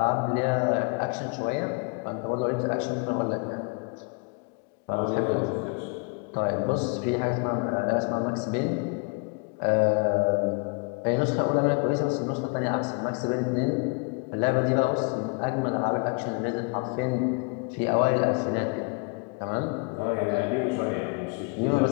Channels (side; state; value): right; quieter; 34.3 dB